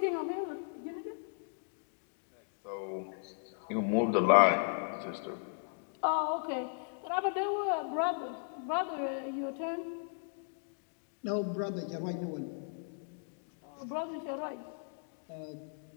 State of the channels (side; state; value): right; silent; digital silence